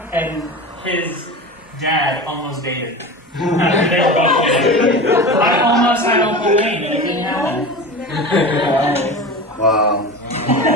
and his dad almost dated. They were both dated. I almost had Uncle Wayne, and it didn't happen. Wow.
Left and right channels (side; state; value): both; normal; correlation 0.30